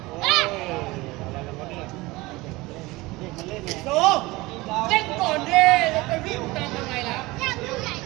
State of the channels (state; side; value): quieter; left; 21.3 dB